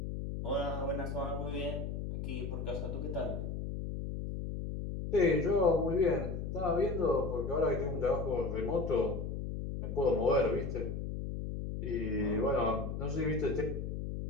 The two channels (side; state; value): left; noise; hum, 4 dB below the sound